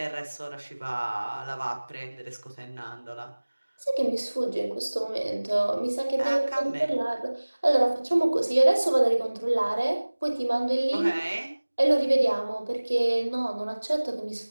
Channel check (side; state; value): both; inverted; correlation -1.00